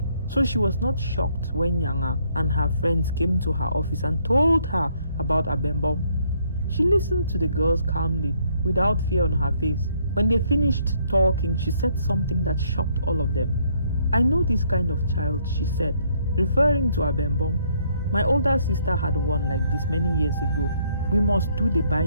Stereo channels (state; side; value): inverted; both; correlation -0.69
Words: So she was not shocked when Nyanga and her friends came to her office and told her about Abembom. She listened to the girls calmly, without fear on her face. When they finished talking, she said something that shocked all of them. "I know this kind of child," she said, referring to Abembom. "My older sister had one like this many years ago. We must do the